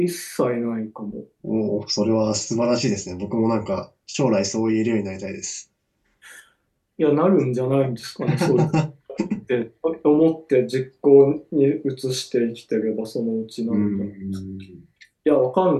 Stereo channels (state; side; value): identical; both; correlation 1.00